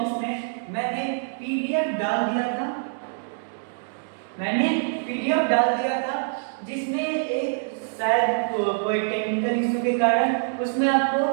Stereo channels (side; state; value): left; silent; digital silence